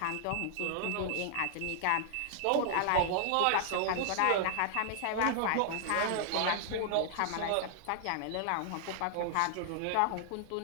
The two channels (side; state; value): both; different; correlation -0.01